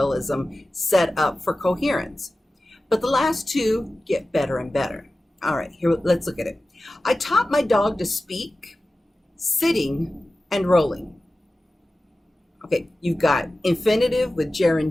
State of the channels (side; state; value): both; normal; correlation 0.95